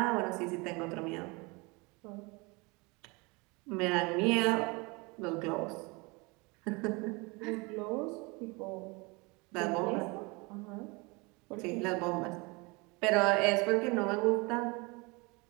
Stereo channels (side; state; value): left; quieter; 27.1 dB